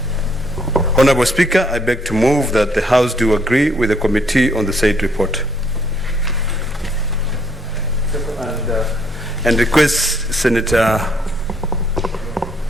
Honorable Speaker, I beg to move that the House do agree with the committee on the said report. And request Senator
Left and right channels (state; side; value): normal; both; correlation 0.68